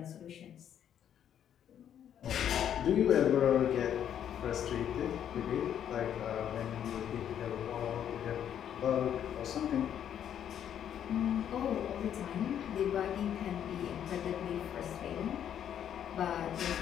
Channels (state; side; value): quieter; right; 9.6 dB